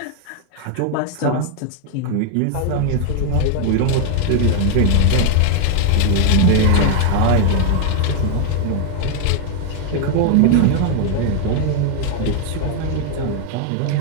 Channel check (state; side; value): different; both; correlation 0.01